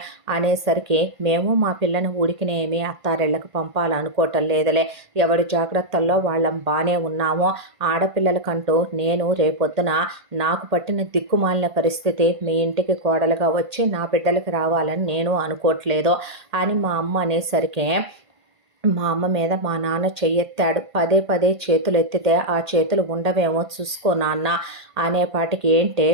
అనేసరికి మేము మా పిల్లని ఊడికినేమి అత్తారిళ్ళకి పంపాలనుకోవటం లేదులే, ఎవరి జాగ్రత్తల్లో వాళ్ళం బాగానే ఉన్నామో, ఆడపిల్లలకంటూ నేను రేపొద్దున నాకు పట్టిన దిక్కుమాలిన పరిస్థితి మీ ఇంటికి కోడలుగా వచ్చి నా బిడ్డలకి రావాలని నేను అనుకోవట్లేదు అని మా అమ్మ అనేసరికి మా అమ్మ మీద మా నాన్న చెయ్యెత్తాడు. పదే పదే చేతులు ఎత్తితే ఆ చేతులు ఉండవేమో చూసుకో నాన్న అనేపాటికి ఏంటే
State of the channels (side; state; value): left; late; 1.5 ms